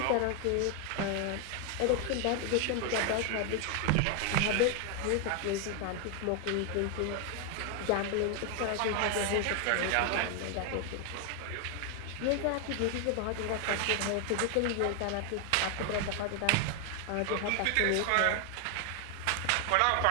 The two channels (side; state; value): both; different; correlation 0.01